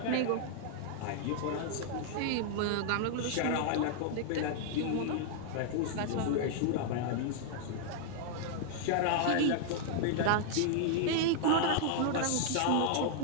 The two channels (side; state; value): both; different; correlation -0.01